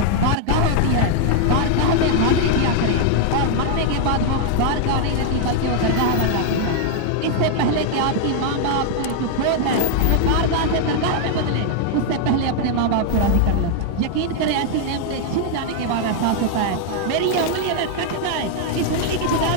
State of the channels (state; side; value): different; both; correlation 0.00